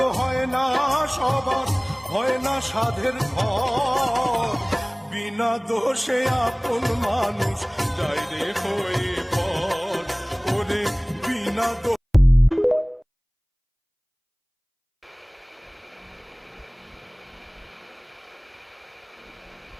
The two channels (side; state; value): both; identical; correlation 1.00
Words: হয় না সবার, হয় না সাধের ঘর। বিনা দোষে আপন মানুষ যায় রে হয়ে পর, ওরে বিনা দোষে